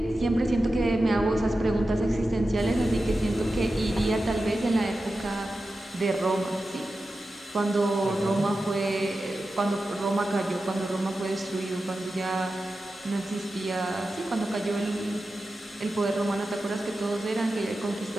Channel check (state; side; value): normal; both; correlation 0.92